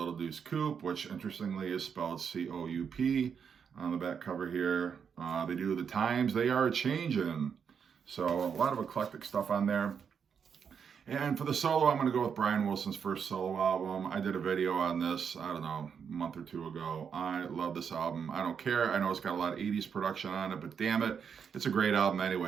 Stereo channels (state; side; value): quieter; left; 6.9 dB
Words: Deuce Coupe, which interestingly is spelled C-O-U-P on the back cover here. They do The Times They Are Changin'. So a lot of eclectic stuff on there. And for the solo, I'm going to go with Brian Wilson's first solo album. I did a video on this, I don't know, a month or 2 ago. I love this album. I don't care. I know it's got a lot of 80s production on it, but damn it, it's a great album